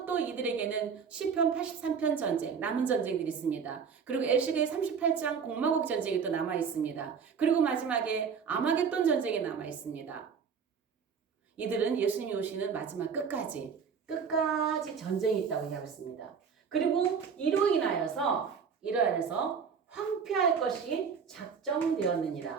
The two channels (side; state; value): left; quieter; 6.4 dB